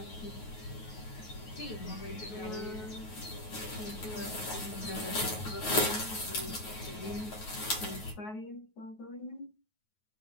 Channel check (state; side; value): late; right; 9.4 ms